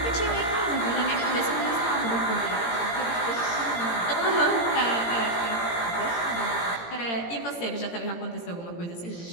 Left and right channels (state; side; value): late; right; 17 ms